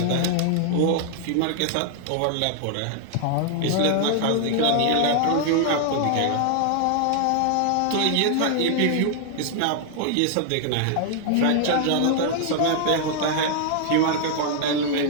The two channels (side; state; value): both; different; correlation 0.00